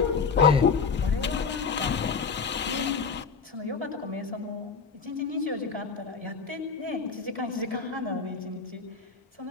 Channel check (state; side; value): quieter; right; 5.3 dB